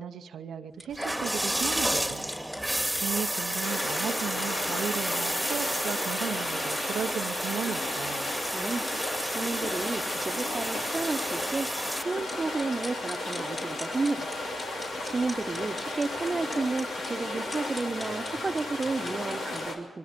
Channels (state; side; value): normal; both; correlation 0.90